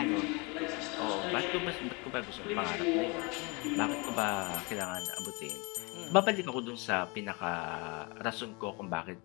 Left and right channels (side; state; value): right; quieter; 29.2 dB